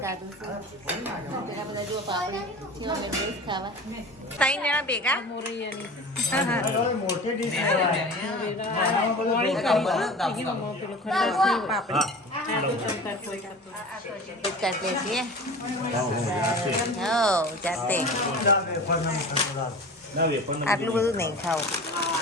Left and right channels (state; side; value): normal; both; correlation 0.35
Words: ત્રણ જણા ભેગા કાઢીએ છીએ જાતે. આટલું બધું નહીં ખાવું.